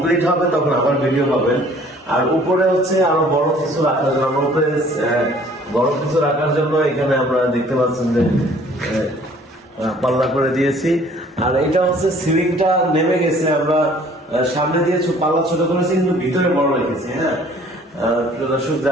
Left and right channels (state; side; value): normal; both; correlation 0.55